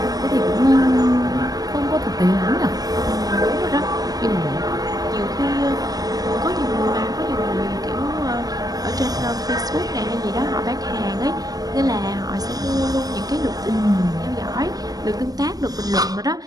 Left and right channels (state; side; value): late; left; 0.18 ms